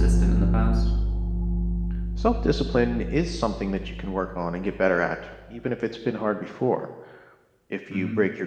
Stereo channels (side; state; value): both; identical; correlation 1.00